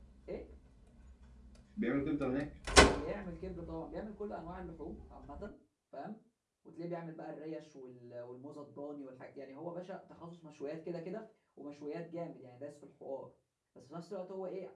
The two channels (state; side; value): identical; both; correlation 1.00